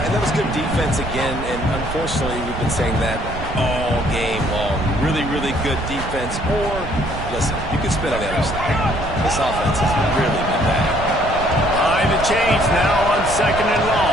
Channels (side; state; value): right; noise; rumble, 8 dB below the sound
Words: that was good defense again, and unfortunately we've been saying that all game long. Really, really good defense. Or, listen, you can spin on the other side. This offense has really been bad. Behind the chains now on 2nd and